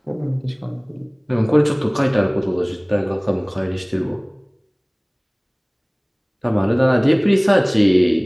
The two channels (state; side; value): identical; both; correlation 1.00